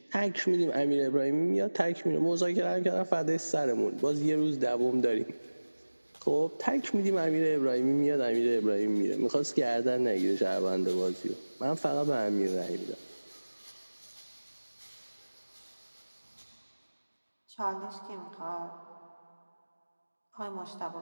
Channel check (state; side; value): inverted; both; correlation -1.00